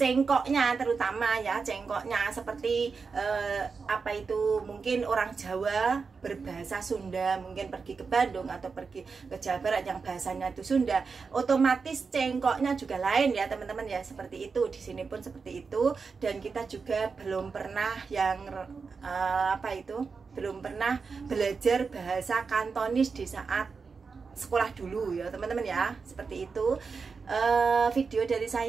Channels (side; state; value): left; quieter; 5.0 dB